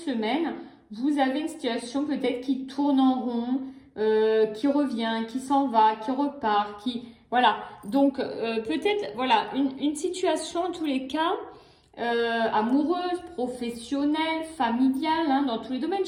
vous avez une situation peut-être qui tourne en rond, qui revient, qui s'en va, qui repart, qui... Voilà. Donc, peut-être, voilà, une situation en tous les cas... amoureuse, professionnelle, familiale, hein, dans tous les domaines.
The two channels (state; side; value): identical; both; correlation 1.00